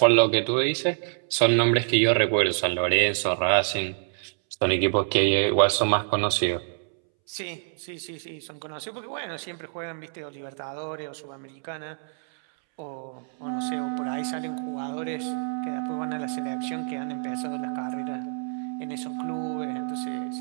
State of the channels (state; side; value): silent; left; 60 dB below the other